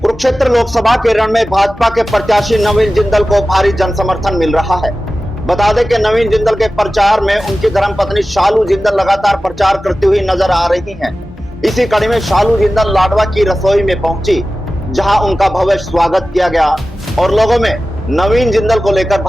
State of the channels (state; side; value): normal; both; correlation 0.95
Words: कुरुक्षेत्र लोकसभा के रण में भाजपा के प्रत्याशी नवीन जिंदल को भारी जनसमर्थन मिल रहा है। बता दें कि नवीन जिंदल के प्रचार में उनकी धर्मपत्नी शालू जिंदल लगातार प्रचार करती हुई नजर आ रही हैं। इसी कड़ी में शालू जिंदल लाडवा की रसोई में पहुंची, जहां उनका भव्य स्वागत किया गया और लोगों में नवीन जिंदल को लेकर